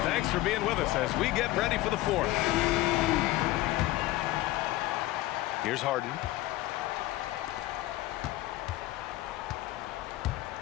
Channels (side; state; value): right; quieter; 16.9 dB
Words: Thanks for being with us as we get ready for the fourth. Here's Harden.